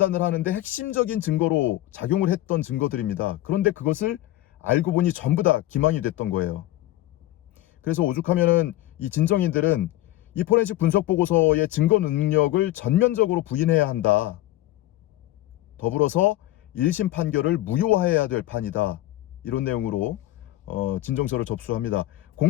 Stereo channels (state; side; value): quieter; right; 15.6 dB